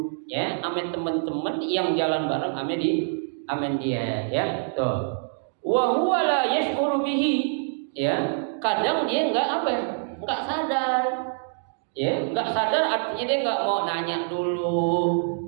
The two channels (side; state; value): left; silent; digital silence